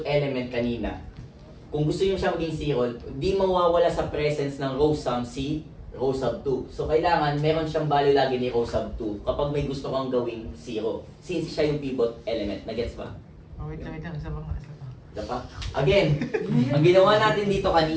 element kanina, kung gusto nyo siya maging 0, di mawawala sa presence ng row sum si row sub 2. So, kailangan meron siyang value lagi ni row sub 2 kapag may gusto kang gawing 0. Since siya yung pivot element. Nagets ba? Wait lang. Isa pa. Diba? Again, ang ginawa natin dito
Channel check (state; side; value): identical; both; correlation 1.00